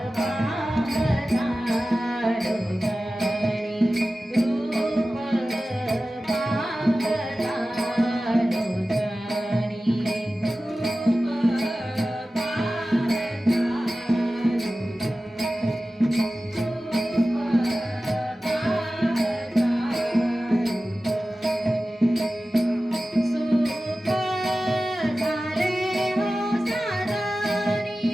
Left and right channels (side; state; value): both; normal; correlation 0.95